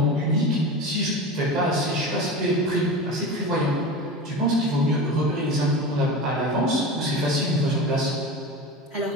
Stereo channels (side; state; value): both; normal; correlation 0.28